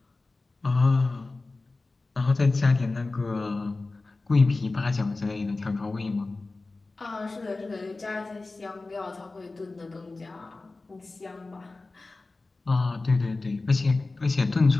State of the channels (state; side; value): quieter; right; 3.4 dB